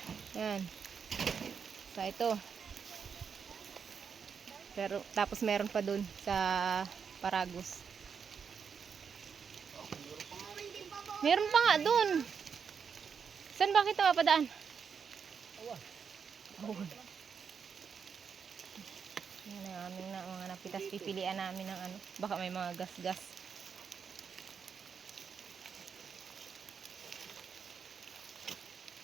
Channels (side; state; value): left; quieter; 6.5 dB